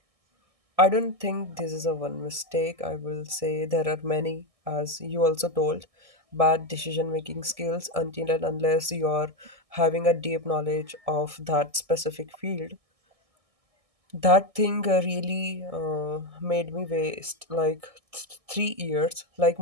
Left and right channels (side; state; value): left; late; 1.6 ms